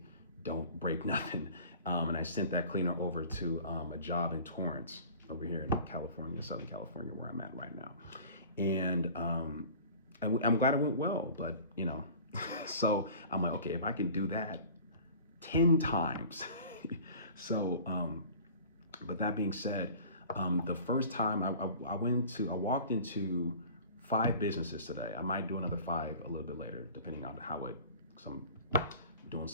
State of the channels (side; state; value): both; inverted; correlation -0.44